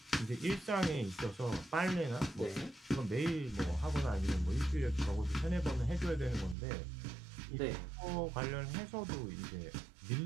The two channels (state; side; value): drops out; left; at 6.6 s